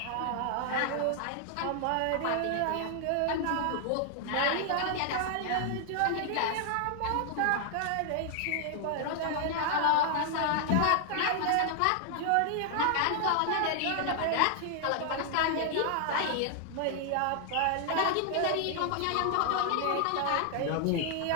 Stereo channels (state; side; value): different; both; correlation 0.00